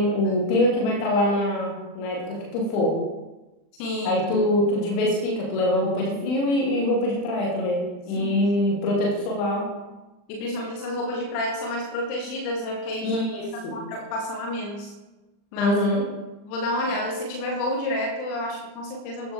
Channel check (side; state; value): right; late; 39 ms